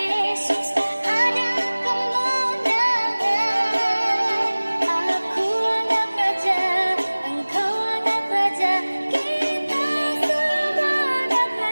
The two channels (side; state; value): both; inverted; correlation -1.00